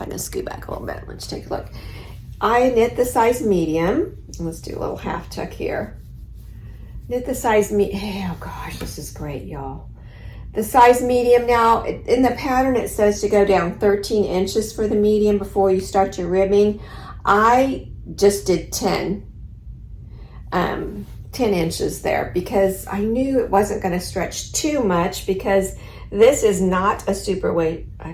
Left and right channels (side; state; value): both; identical; correlation 1.00